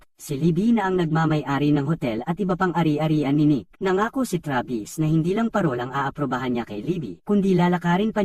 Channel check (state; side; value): identical; both; correlation 1.00